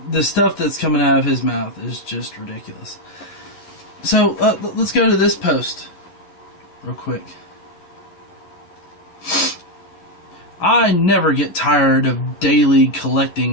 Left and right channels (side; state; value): right; late; 11 ms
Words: the stuff that's coming out of his mouth is just ridiculous. So, let's go to this post real quick. I never get tired of daily